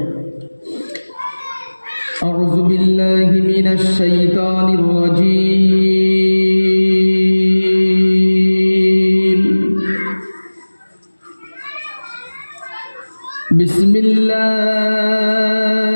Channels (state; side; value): inverted; both; correlation -1.00